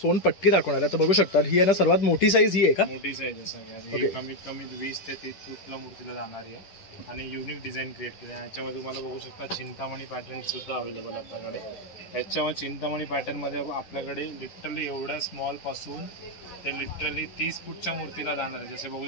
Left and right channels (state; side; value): late; right; 10 ms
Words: दाखवणार आहे. तर बघू शकता ही आहे ना सर्वात मोठी साईज ही आहे का? मोठी साईज आहे सगळ्यात. ओके. कमीत कमी 20 ते 30 फूटला मूर्तीला जाणारी आहे आणि युनिक डिझाईन क्रिएट केली आहे. याच्यामध्ये तुम्हाला बघू शकता चिंतामणी पॅटर्न सुद्धा अवेलेबल आहे आपल्याकडे. याच्यावर चिंतामणी पॅटर्न मध्ये आपल्याकडे लिटरली एवढ्या स्मॉल पासून ते लिटरली 30 फूटच्या मूर्तीला जाणार आहे. जसे बघू